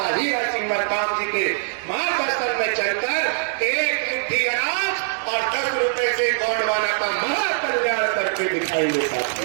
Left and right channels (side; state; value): left; silent; digital silence